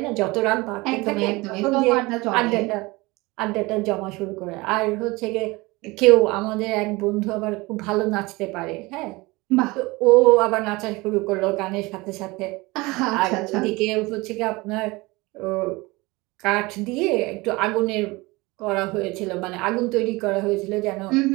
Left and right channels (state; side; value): quieter; left; 22.9 dB